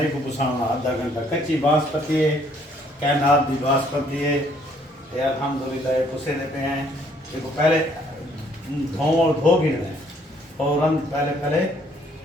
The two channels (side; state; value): both; normal; correlation 0.64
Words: को पुसाना आधा घंटा कच्ची बासमती है कैनात दी बासमती है ये अल्हम्दुलिल्लाह ये पुसे दे पे हैं देखो पहले धो गिरना है फौरन पहले